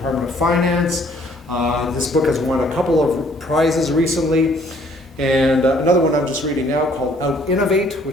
of Finance. This book has won a couple of prizes recently. And another one I'm just reading now called Out-Innovate,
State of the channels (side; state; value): both; normal; correlation 0.61